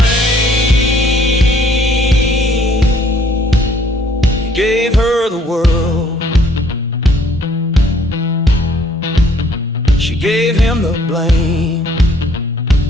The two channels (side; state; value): both; normal; correlation 0.61